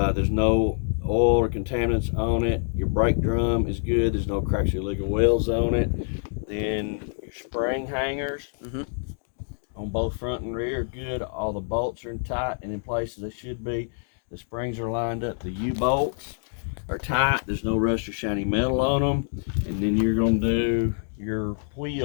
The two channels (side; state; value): right; silent; digital silence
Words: no oil or contaminants on it. Your brake drum is good. There's no cracks or illegal welds on it. Then your spring hangers on both front and rear are good. All the bolts are tight and in place as they should be. The springs are lined up. The U-bolts are tight. There's no rust or shiny metal on them. And then you're going to do your